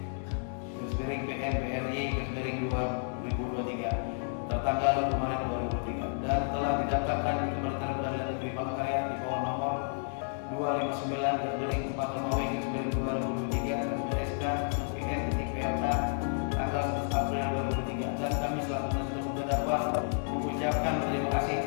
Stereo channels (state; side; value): silent; right; digital silence